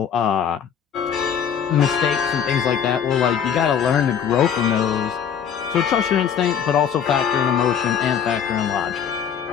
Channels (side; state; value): right; quieter; 7.9 dB